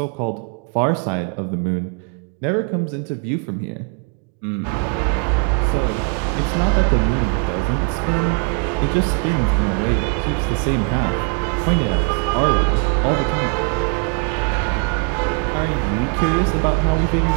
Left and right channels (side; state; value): left; quieter; 36.7 dB